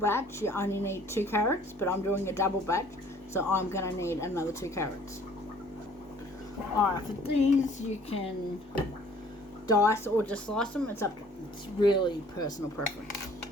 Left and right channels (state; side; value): normal; both; correlation 0.55